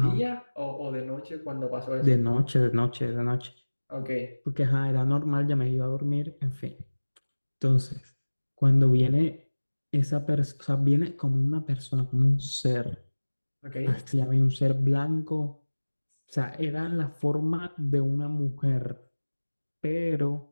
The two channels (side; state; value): both; inverted; correlation -1.00